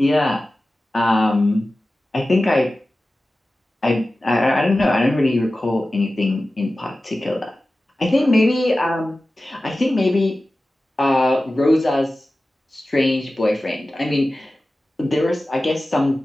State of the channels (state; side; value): normal; both; correlation 0.95